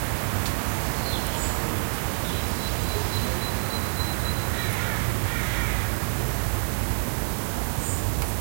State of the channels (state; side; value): silent; left; digital silence